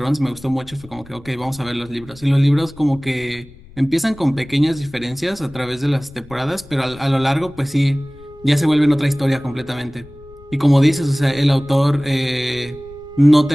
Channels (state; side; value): noise; left; rumble, 22 dB below the sound